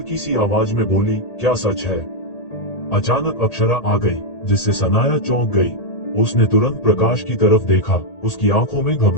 सी आवाज में बोली, क्या सच है? अचानक अक्षरा आ गई, जिससे सनाया चौंक गई। उसने तुरंत प्रकाश की तरफ देखा। उसकी आंखों में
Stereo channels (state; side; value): late; right; 1.8 ms